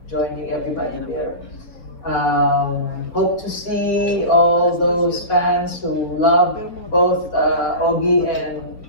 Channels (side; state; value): right; late; 4.1 ms